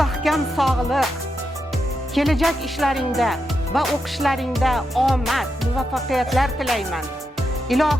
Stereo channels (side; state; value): both; normal; correlation 0.85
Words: sog'lik, kelajak ishlaringda va o'qishlaringda omad, muvaffaqiyatlar tilayman.